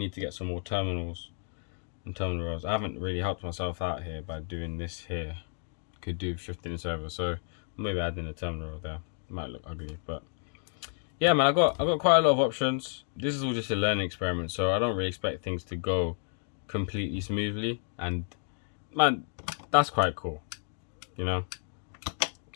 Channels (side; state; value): right; silent; 57 dB below the other